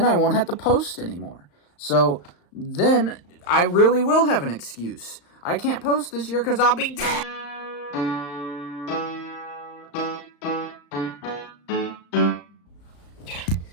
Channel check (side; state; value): right; late; 35 ms